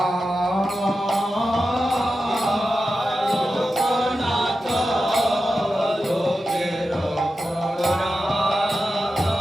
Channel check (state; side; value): normal; both; correlation 0.91